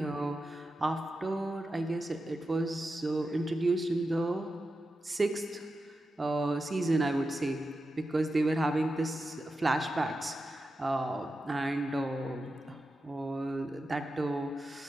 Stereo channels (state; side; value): normal; both; correlation 0.90